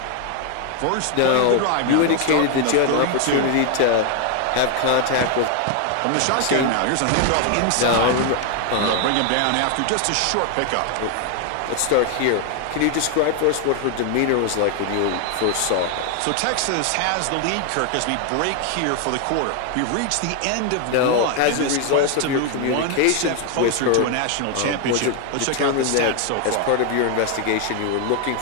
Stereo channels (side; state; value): both; different; correlation 0.01